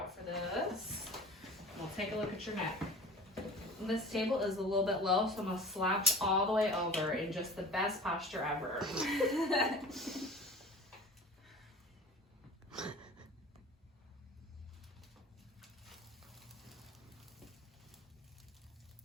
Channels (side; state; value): both; normal; correlation 0.40